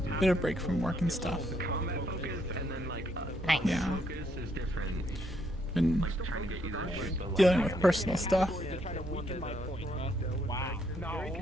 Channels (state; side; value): normal; both; correlation 0.72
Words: bit of break from work and stuff. Nice. Yeah. Been dealing with personal stuff.